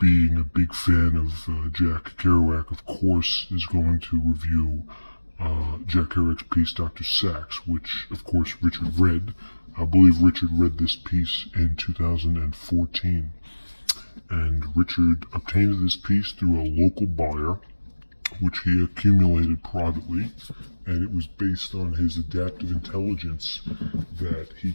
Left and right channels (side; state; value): both; inverted; correlation -1.00